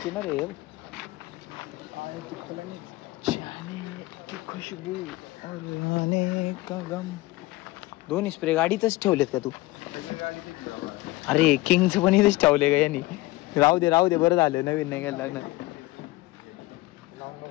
ना रे. खुशबू और आने का गम. दोन्ही स्प्रे गाडीतच ठेवलेत का तू? अरे किंगच पण इथेच ठेवले का यांनी. राहू दे बरं झालं नवीन नाही घ्यायला लागणार.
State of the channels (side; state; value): right; quieter; 19.9 dB